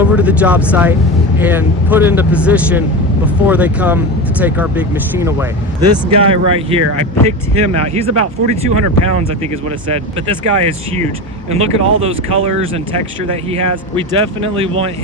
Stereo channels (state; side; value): normal; both; correlation 0.24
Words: to the job site, and put into position before they come to take our big machine away. This guy right here, I picked him out. He's about 4,200 pounds, I think is what it said, but this guy is huge. And look at all those colors and texture that he has. We definitely want